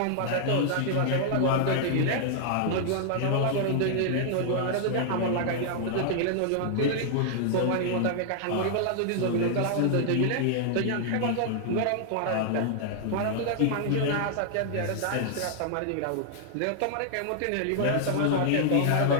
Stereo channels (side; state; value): both; different; correlation -0.01